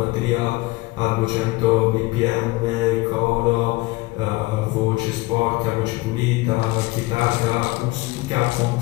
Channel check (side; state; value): right; quieter; 21.3 dB